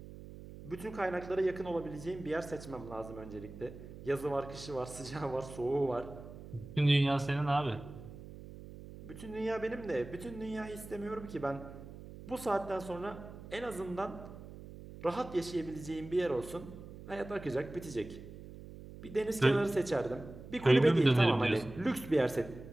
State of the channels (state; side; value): noise; right; hum, 14 dB below the sound